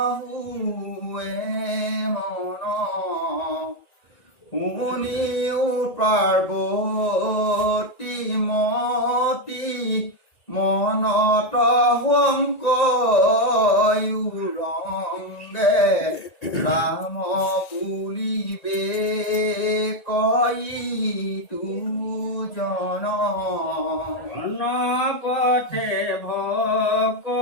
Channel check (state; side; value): late; right; 1.9 ms